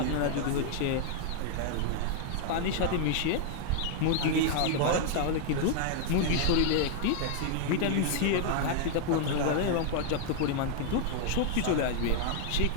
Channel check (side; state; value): both; different; correlation 0.00